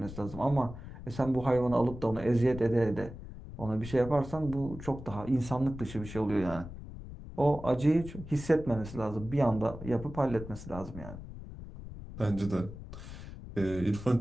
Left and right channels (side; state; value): left; noise; rumble, 12 dB below the sound